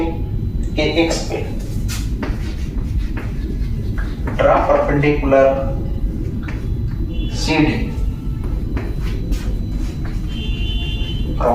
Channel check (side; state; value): both; identical; correlation 1.00